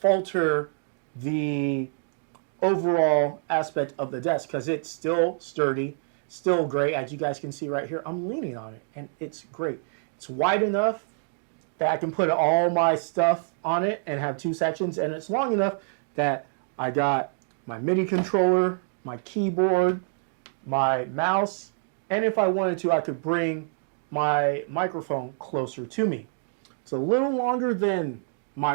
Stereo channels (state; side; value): silent; left; digital silence